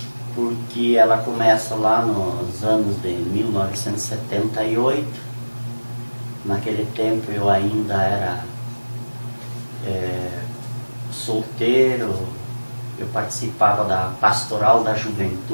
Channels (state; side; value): inverted; both; correlation -1.00